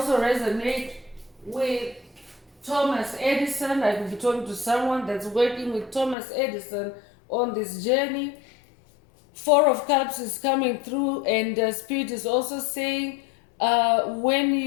resonate with Thomas Edison. I could be talking to someone that's working with Thomas Edison on this journey. Four of Cups is coming through, and Spirit is also saying when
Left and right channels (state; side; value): drops out; right; at 6.2 s